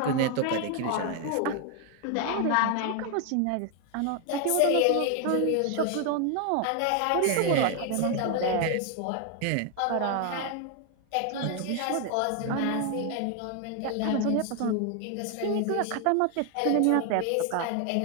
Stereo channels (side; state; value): both; different; correlation 0.00